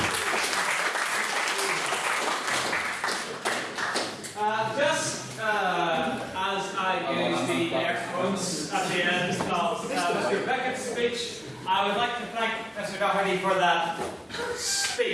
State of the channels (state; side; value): identical; both; correlation 1.00